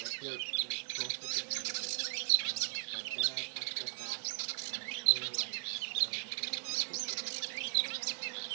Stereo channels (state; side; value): silent; left; digital silence